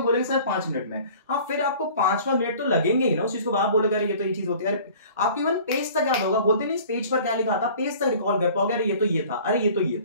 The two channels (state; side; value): inverted; both; correlation -0.47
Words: सर 5 मिनट में, हाँ फिर आपको 5वां मिनट तो लगेंगे ही ना उस चीज को। आप बोलोगे अरे ये तो ये चीज होती है, अरे आपकी इवन पेज तक याद होगा, बोलते नहीं इस पेज पर क्या लिखा था, पेज तक रिकॉल कर पाओगे, अरे ये तो ये था, अरे ये तो ये